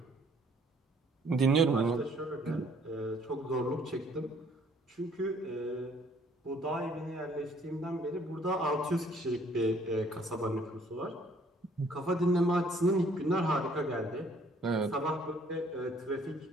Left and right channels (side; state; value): both; normal; correlation 0.61